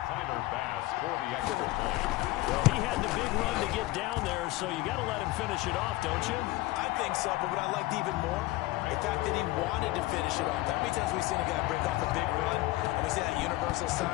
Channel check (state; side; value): quieter; right; 18.4 dB